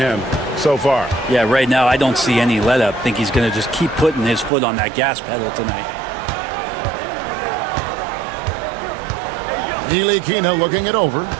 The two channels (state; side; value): drops out; left; at 4.5 s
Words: so far. Yeah, right now I don't see any let up. Think he's going to just keep putting his foot on that gas pedal tonight. Ntilikina looking it over.